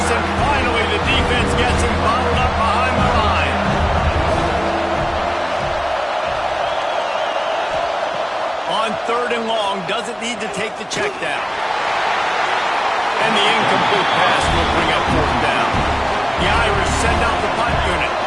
and finally the defense gets him bottled up behind the line. On 3rd and long, doesn't need to take the check down. And the incomplete pass will bring up 4th down. The Irish send out the punt unit.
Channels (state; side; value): identical; both; correlation 1.00